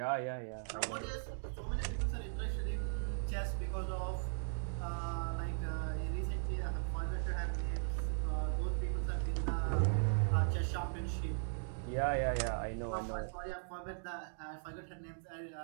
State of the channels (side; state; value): left; silent; digital silence